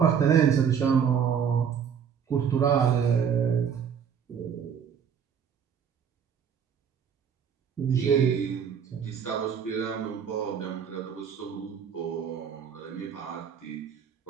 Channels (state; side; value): quieter; left; 7.6 dB